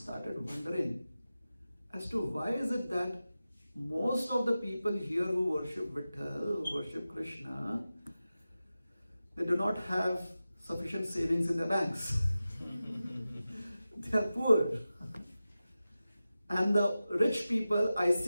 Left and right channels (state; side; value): inverted; both; correlation -0.94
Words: wondering as to why is it that most of the people here who worship Vitthal, who worship Krishna, they do not have sufficient savings in their banks. They are poor. And the rich people, I